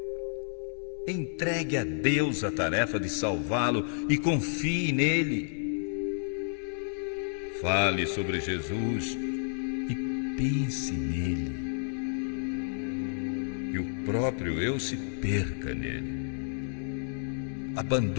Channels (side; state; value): right; silent; digital silence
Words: Entregue a Deus a tarefa de salvá-lo e confie nele. Fale sobre Jesus e pense nele. Que o próprio eu se perca nele.